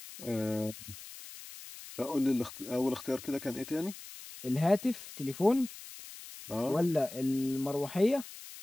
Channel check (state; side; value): noise; left; hiss, 14 dB below the sound